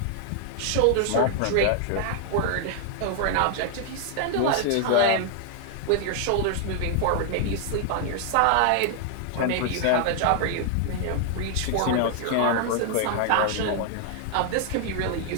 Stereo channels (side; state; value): both; different; correlation 0.00